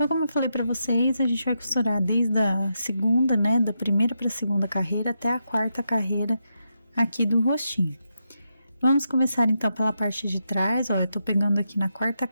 como eu falei pra vocês, a gente vai costurar desde a segunda, né, da primeira pra segunda carreira até a 4ª carreira aqui do rostinho. Vamos começar, então, pela parte de trás, ó, eu tô pegando aqui na 4ª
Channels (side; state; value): both; inverted; correlation -0.84